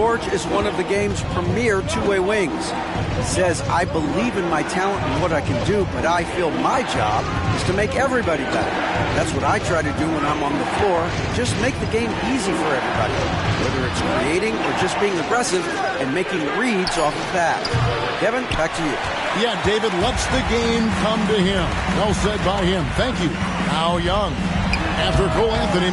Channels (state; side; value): identical; both; correlation 1.00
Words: is one of the game's premier two-way wings. He says, I believe in my talent and what I can do, but I feel my job is to make everybody better. That's what I try to do when I'm on the floor. Just make the game easy for everybody, whether it's creating or just being aggressive and making reads off the pass. Kevin, back to you. Yeah, David lets the game come to him. Well said by him. Thank you. Now Young. After Cole Anthony